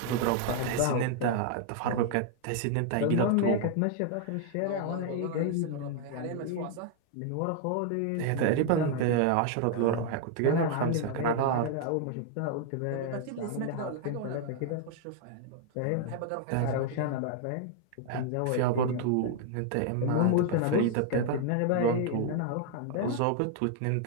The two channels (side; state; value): both; different; correlation 0.00